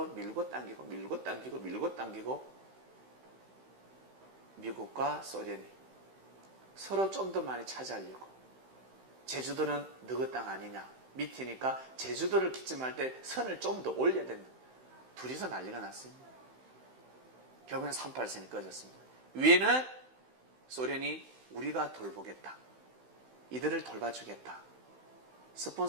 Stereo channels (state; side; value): late; left; 16 ms